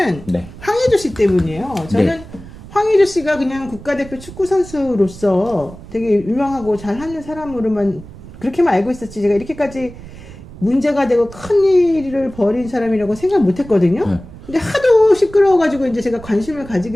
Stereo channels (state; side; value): noise; right; rumble, 16 dB below the sound